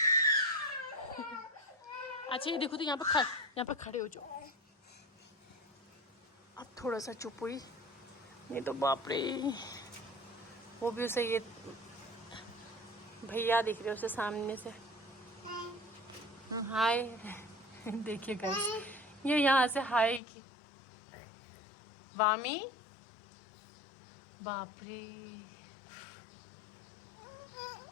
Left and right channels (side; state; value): right; drops out; at 20.2 s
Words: अच्छा ये देखो, तो यहाँ पे खड़े हो जाओ। अब थोड़ा सा चुप हुई, नहीं तो बाप रे। वो भी उसे, ये भैया दिख रहे उसे सामने से। हाय देखिए गाइस, ये यहाँ से हाय की। वामी, बाप रे,